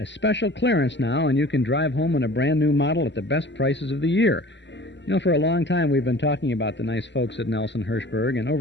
special clearance now, and you can drive home in a brand-new model at the best prices of the year. You know, for a long time we've been talking about the nice folks at Nelson Hirschberg, and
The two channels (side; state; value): right; late; 0.52 ms